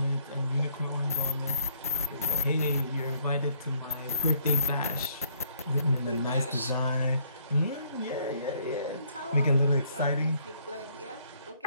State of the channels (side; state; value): both; inverted; correlation -0.67